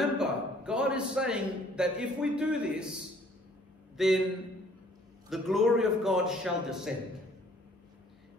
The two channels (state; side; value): normal; both; correlation 0.58